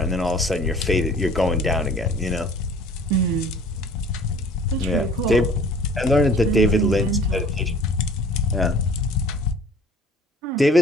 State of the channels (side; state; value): both; normal; correlation 0.49